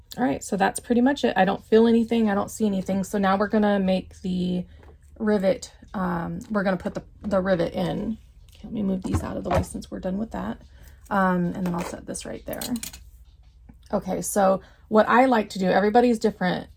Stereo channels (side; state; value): both; identical; correlation 1.00